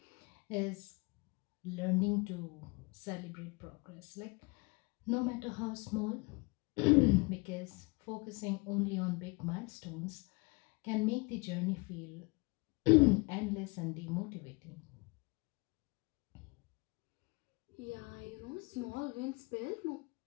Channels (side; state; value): right; quieter; 28.5 dB